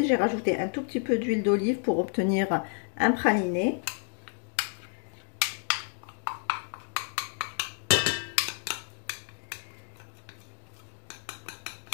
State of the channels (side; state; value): right; silent; 58 dB below the other